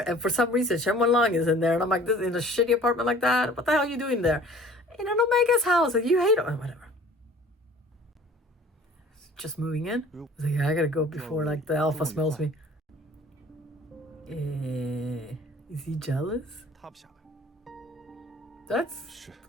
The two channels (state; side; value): normal; both; correlation 0.49